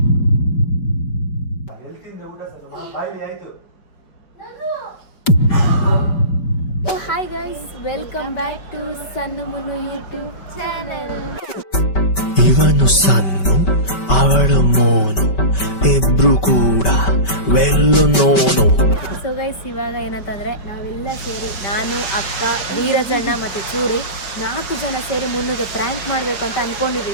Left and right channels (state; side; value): late; right; 5.2 ms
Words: Hi guys, welcome back to Sannu Munnu YouTube channel. ಇವನು ಸನ್ನು, ಅವಳು ಮೋನು, ಇಬ್ರು ಕೂಡ ವೆಲ್ಲು ನೋನು. ಸೊ ಗೈಸ್, ಇವಾಗ ಏನಂತಂದ್ರೆ ನಾವೆಲ್ಲ ಸೇರಿ, ನಾನು, ಅಕ್ಕ, ವೀರಜಣ್ಣ ಮತ್ತೆ ಚೂರಿ 4 ಜನ ಸೇರಿ ಮುನ್ನುಗೆ ಪ್ರ್ಯಾಂಕ್ ಮಾಡಬೇಕು ಅಂತ